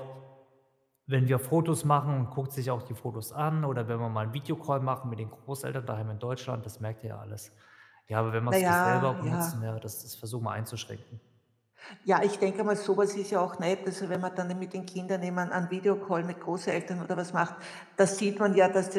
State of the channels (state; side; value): identical; both; correlation 1.00